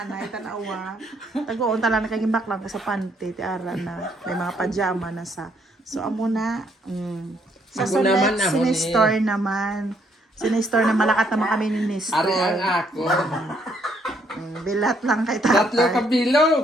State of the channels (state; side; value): normal; both; correlation 0.70